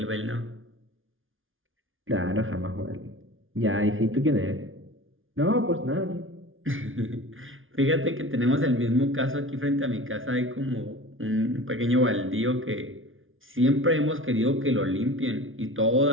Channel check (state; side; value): late; left; 0.58 ms